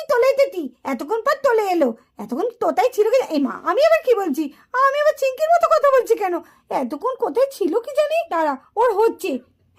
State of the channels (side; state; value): both; identical; correlation 1.00